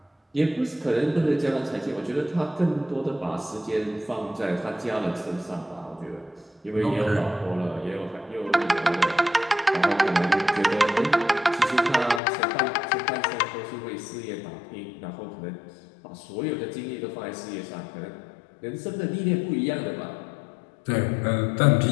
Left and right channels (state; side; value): drops out; right; at 12.2 s